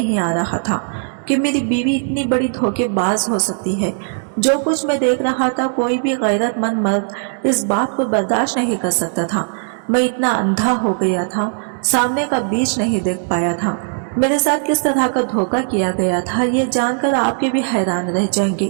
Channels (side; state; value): left; silent; 67 dB below the other